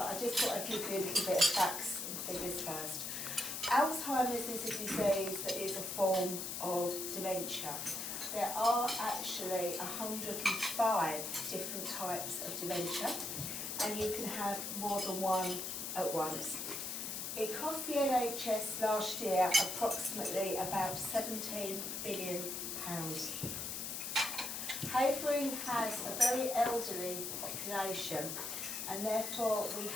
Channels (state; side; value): noise; left; hiss, 4 dB below the sound